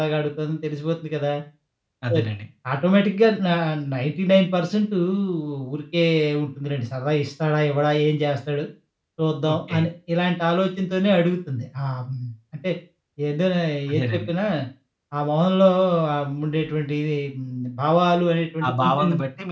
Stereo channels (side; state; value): both; identical; correlation 1.00